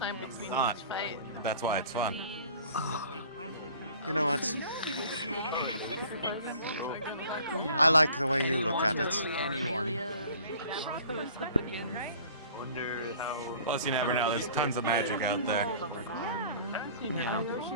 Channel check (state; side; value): inverted; both; correlation -0.49